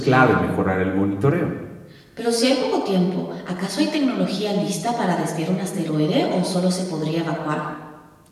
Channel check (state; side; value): identical; both; correlation 1.00